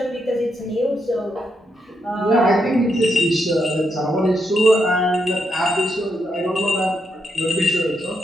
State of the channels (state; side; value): normal; both; correlation 0.80